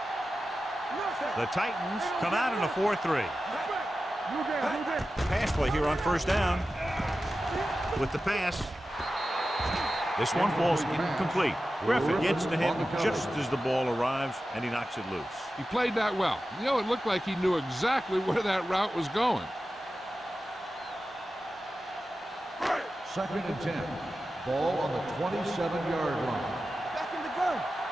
The Titans come out in a 4-3. Pass play here on 1st down. With the pass. This one falls incomplete. Griffin gets to him just as the ball arrives, and he knocks it loose. He played that well. You know, it looked like he knew exactly where that route was going. 2nd and 10. Ball on the 27-yard line. Back in the gun.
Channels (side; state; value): both; normal; correlation 0.93